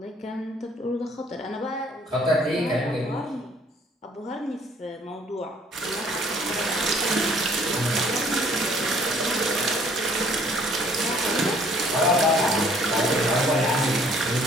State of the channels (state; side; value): normal; both; correlation 0.59